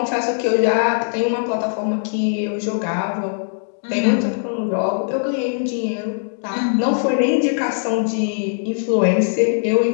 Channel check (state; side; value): silent; right; digital silence